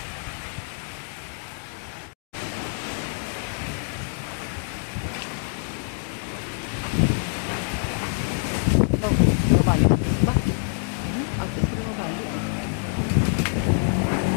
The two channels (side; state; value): right; silent; 61 dB below the other